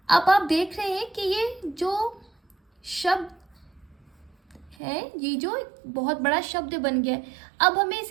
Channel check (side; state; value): left; drops out; at 4.8 s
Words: अब आप देख रहे हैं कि ये जो शब्द है, ये जो बहुत बड़ा शब्द बन गया है, अब हमें